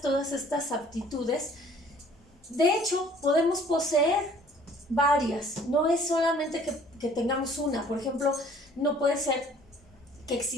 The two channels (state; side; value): normal; both; correlation 0.55